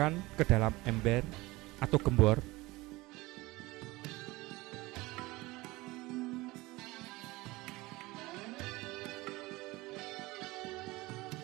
ke dalam ember atau gembor.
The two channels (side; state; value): left; quieter; 20.9 dB